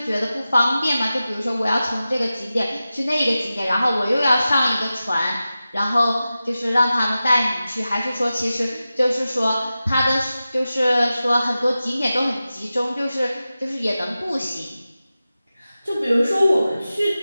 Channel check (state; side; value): inverted; both; correlation -0.94